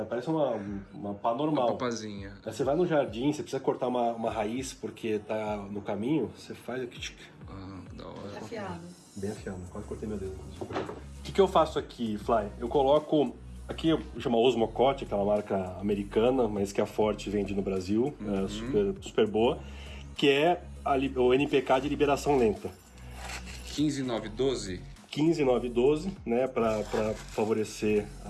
parece uma pá normal. Uma papazinha. Aí você vai no jardim, você precisa cortar uma raiz porque tá no caminho, você faz aqui. Da hora. Afiado. Bem afiado, quase cortei meu dedo. O que eu faço aqui, Fly? Eu coloco... Aqui chama Osmocote, aquela marca americana, mas que a Forte vende no Brasil, super boa, que é o NPK de liberação lenta. 15,9,12? 15,9,12, né, para favorecer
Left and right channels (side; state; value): both; identical; correlation 1.00